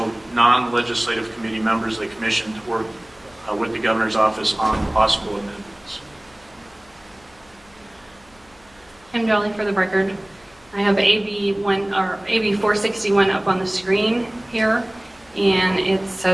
non-legislative committee members of the commission to work with the governor's office on possible amendments. Kim Jolly for the record. I have AB 461 up on the screen here, and it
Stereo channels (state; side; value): noise; left; hum, 29 dB below the sound